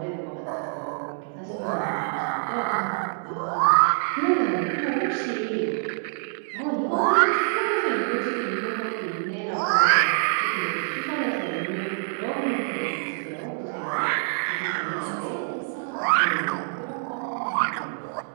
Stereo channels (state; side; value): silent; left; 61 dB below the other